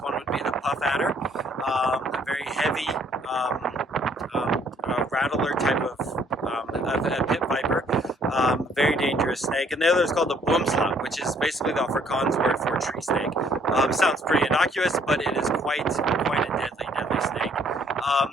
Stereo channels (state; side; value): normal; both; correlation 0.63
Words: would be the puff adder, a very heavy rattler type of a pit viper, very dangerous snake. And the other is called the boomslang, which is basically the Afrikaans word for tree snake. Sounds pretty innocuous, but it is quite a deadly snake.